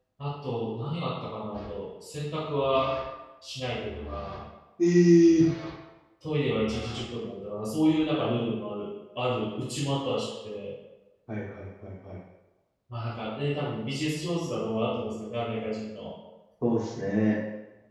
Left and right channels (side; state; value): both; identical; correlation 1.00